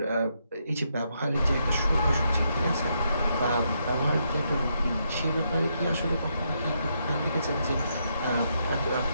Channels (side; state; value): both; inverted; correlation -0.79